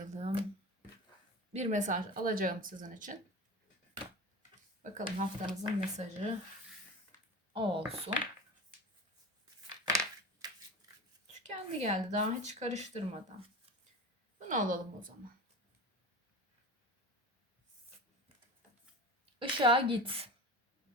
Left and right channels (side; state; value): both; normal; correlation 0.31